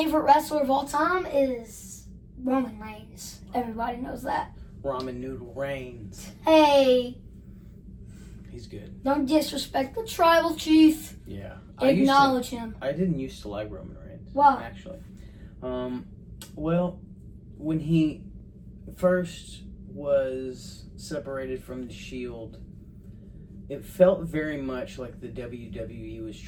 wrestler of all time is Roman Reigns. Everybody knows that. Ramen Noodle Reigns. Hey, He's good. don't disrespect the tribal chief. Yeah. Acknowledge him. I didn't used to like Roman Reigns. Why? Actually. Well, when he first was separated from the Shield, it felt very much like the WWE was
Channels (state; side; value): identical; both; correlation 1.00